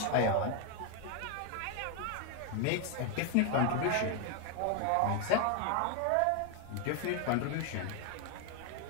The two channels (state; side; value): different; both; correlation 0.01